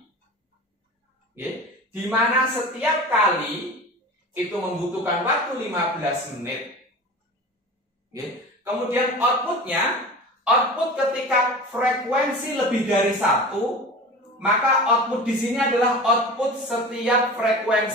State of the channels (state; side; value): normal; both; correlation 0.34